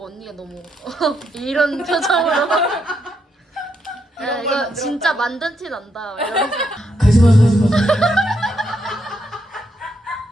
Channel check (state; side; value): normal; both; correlation 0.79